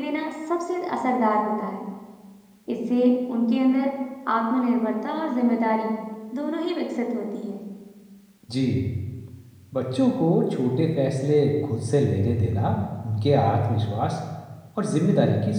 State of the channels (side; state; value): both; identical; correlation 1.00